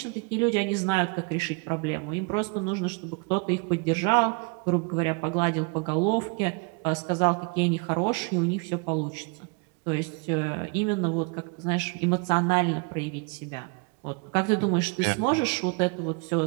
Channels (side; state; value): left; quieter; 32.5 dB